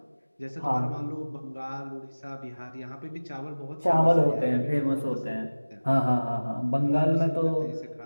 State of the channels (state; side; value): inverted; both; correlation -1.00